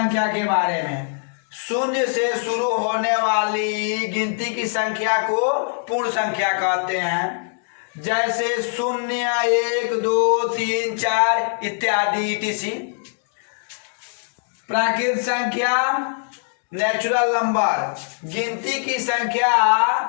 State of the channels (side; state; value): right; silent; digital silence